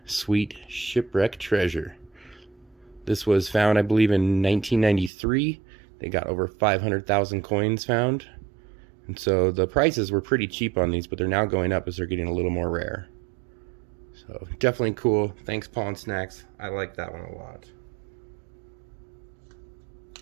sweet shipwreck treasure. This was found, I believe, in 1993. They got over 500,000 coins found. And so the prices were pretty cheap on these, but they're now going up as they're getting a little more rare. So definitely cool. Thanks, Paul and Snax. I like that one a lot.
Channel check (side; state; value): left; drops out; at 5.1 s